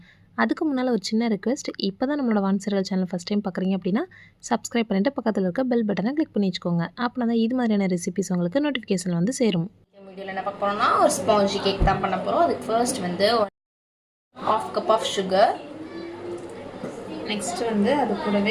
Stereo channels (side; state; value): both; identical; correlation 1.00